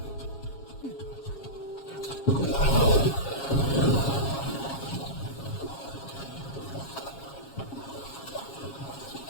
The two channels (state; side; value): late; right; 7.3 ms